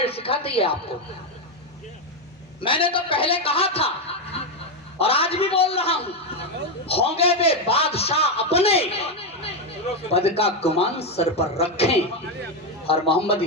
सिखाती है आपको। मैंने तो पहले कहा था और आज भी बोल रहा हूं, होंगे वे बादशाह अपने, पद का गुमान सर पर रखें। और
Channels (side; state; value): both; normal; correlation 0.08